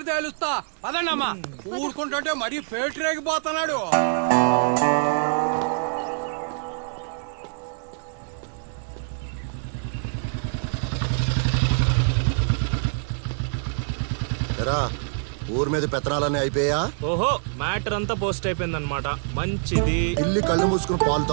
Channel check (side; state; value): left; silent; digital silence